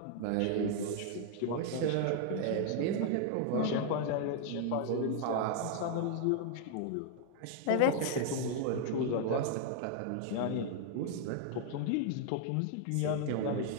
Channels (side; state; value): both; different; correlation 0.00